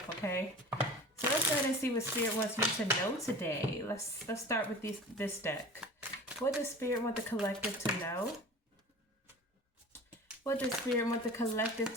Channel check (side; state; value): both; normal; correlation 0.38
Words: okay? So let's go ahead and see what Spirit wants you to know today. Let's start with this deck. What does Spirit want the collective to know? What does Spirit want the collective